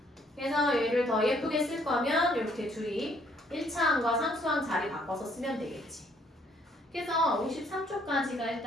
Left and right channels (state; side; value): normal; both; correlation 0.66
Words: 그래서 얘를 더 예쁘게 쓸 거면 이렇게 둘이 1차항과 상수항 자리 바꿔서 쓰면 되겠지. 그래서 53초까지가